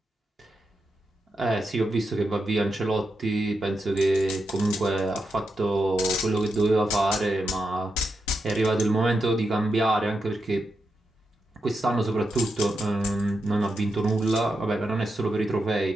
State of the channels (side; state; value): both; normal; correlation 0.86